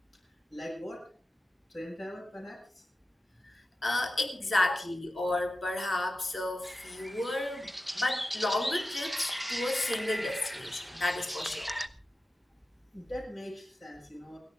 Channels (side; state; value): both; normal; correlation 0.93